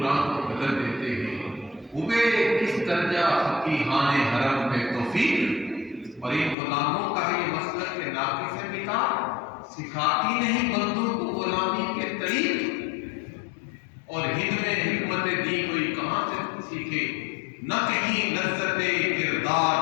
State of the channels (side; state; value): right; drops out; at 6.6 s